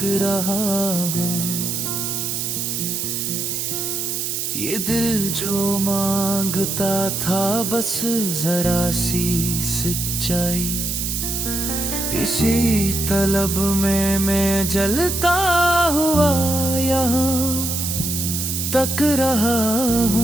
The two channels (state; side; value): noise; right; hiss, 2 dB below the sound